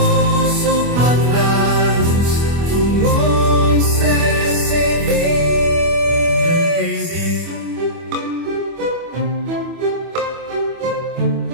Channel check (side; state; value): left; late; 25 ms